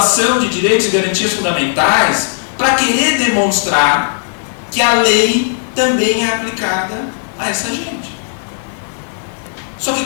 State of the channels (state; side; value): silent; right; 68 dB below the other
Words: de direitos e garantias fundamentais, para querer demonstrar que a lei também é aplicada a essa gente. Só que